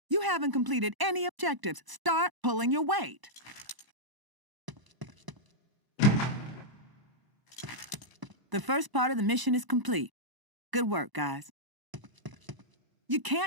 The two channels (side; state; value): left; late; 1.0 ms